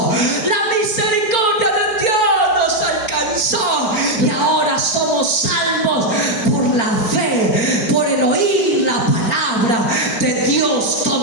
la misericordia de Dios nos alcanzó, y ahora somos salvos por la fe, por el oír la palabra de Dios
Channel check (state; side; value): late; right; 4.4 ms